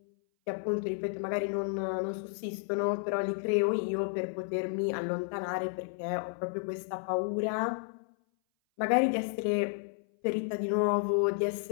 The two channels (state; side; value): silent; right; 57 dB below the other